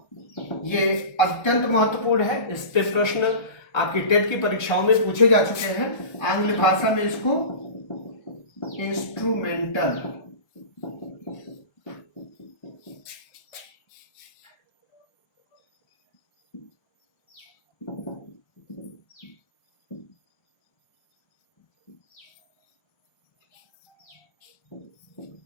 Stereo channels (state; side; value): late; right; 1.3 ms